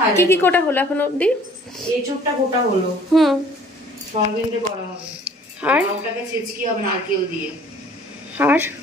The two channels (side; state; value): both; normal; correlation 0.54